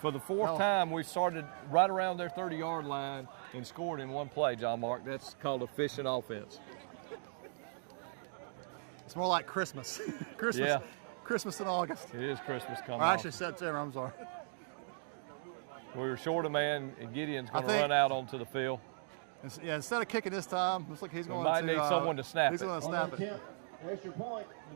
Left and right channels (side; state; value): left; silent; digital silence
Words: for the fourth time, we started right around their 30-yard line and scored in one play, John Mark. That's called efficient offense. It's more like Christmas. Christmas. Yeah. Christmas in August. It is Christmas coming. Or actually September, I'm sorry. We were short a man, and Gideon's going to run out onto the field. Yeah, instead of kicking this time, looks like he's going to. Might need someone to snap He's it. going to snap it. Extra point,